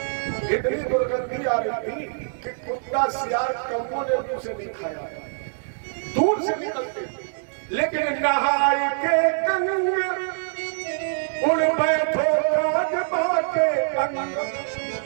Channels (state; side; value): silent; left; digital silence